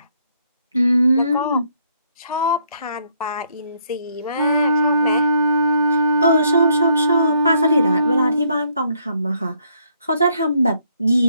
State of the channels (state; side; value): inverted; both; correlation -0.70